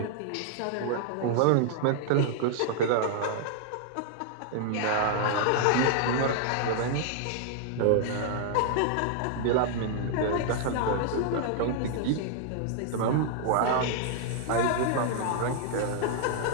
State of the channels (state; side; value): different; both; correlation -0.01